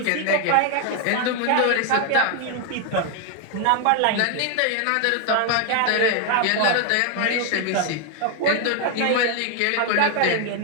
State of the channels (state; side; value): different; both; correlation 0.00